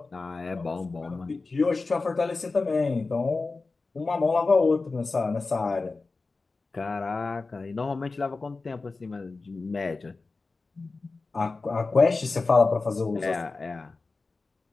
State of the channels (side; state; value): right; quieter; 3.8 dB